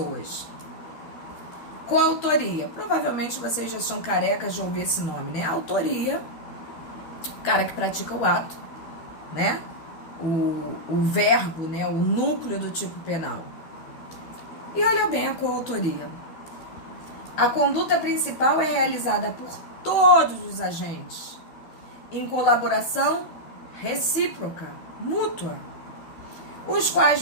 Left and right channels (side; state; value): right; late; 12 ms